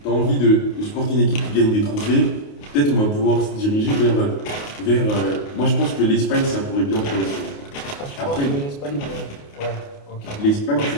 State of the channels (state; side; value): late; right; 28 ms